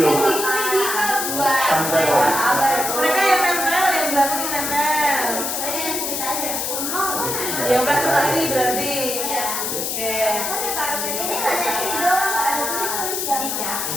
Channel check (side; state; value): left; noise; hiss, 2 dB below the sound